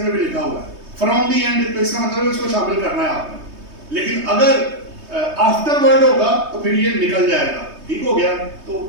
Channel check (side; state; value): left; late; 3.2 ms